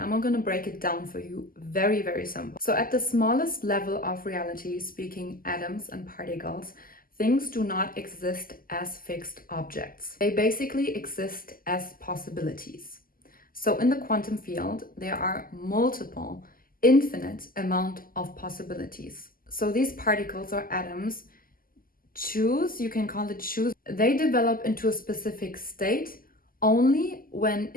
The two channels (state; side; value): late; right; 0.42 ms